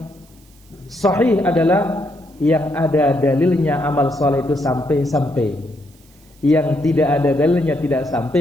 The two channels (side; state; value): right; noise; hiss, 30 dB below the sound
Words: sahih adalah yang ada dalilnya amal saleh itu sampai. Yang tidak ada dalilnya tidak